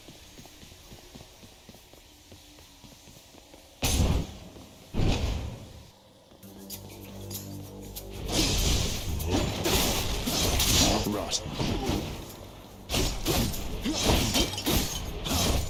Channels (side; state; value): both; identical; correlation 1.00